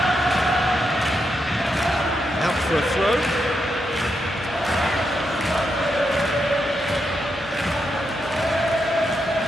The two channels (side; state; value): both; normal; correlation 0.83